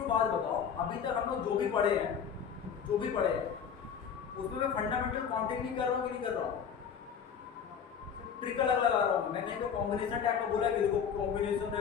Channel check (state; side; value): quieter; right; 7.4 dB